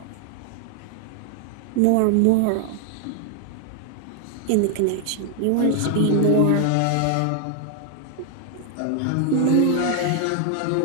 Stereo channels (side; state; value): both; different; correlation 0.00